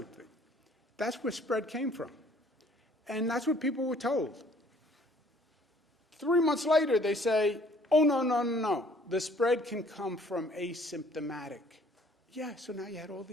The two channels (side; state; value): both; normal; correlation 0.58